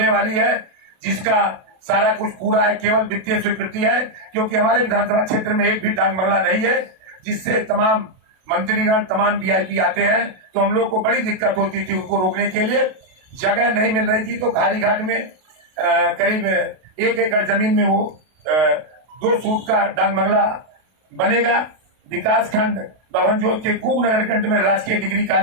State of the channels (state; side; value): late; left; 32 ms